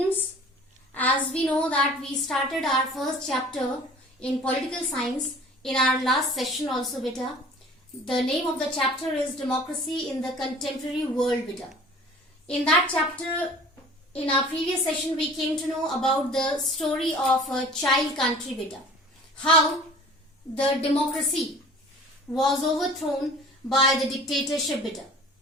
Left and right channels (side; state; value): both; normal; correlation 0.46